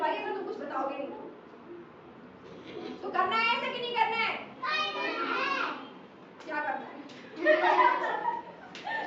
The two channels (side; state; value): both; identical; correlation 1.00